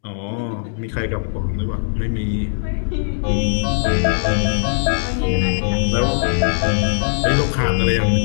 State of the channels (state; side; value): silent; right; digital silence